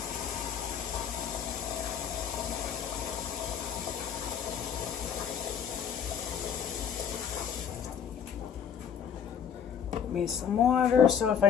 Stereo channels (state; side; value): quieter; right; 7.5 dB